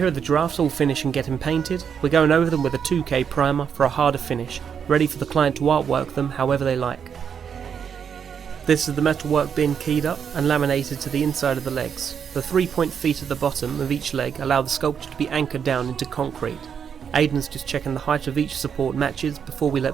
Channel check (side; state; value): left; quieter; 7.4 dB